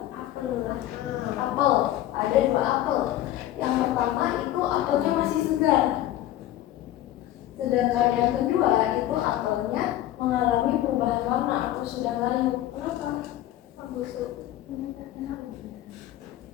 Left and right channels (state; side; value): quieter; right; 13.6 dB